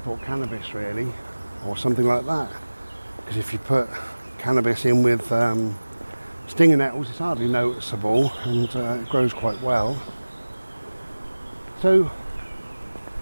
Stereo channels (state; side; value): inverted; both; correlation -1.00